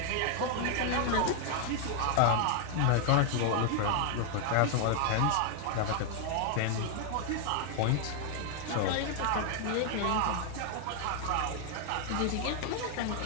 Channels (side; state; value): both; different; correlation 0.00